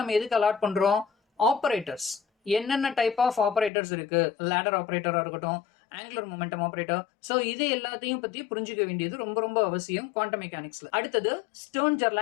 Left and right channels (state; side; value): drops out; right; at 3.7 s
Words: நம்ம எதுக்கு அலாட் பண்றோம், ஆபரேட்டர்ஸ். என்னென்ன டைப் ஆஃப் ஆபரேட்டர்ஸ் இருக்கு, லேடர் ஆபரேட்டரா இருக்கட்டும், ஆங்குலர் மொமெண்டம் ஆபரேட்டர். சோ இது எல்லாத்தையும் பத்தி புரிஞ்சுக்க வேண்டியது ரொம்ப ரொம்ப அவசியம் குவாண்டம் மெக்கானிக்ஸ்ல. அடுத்தது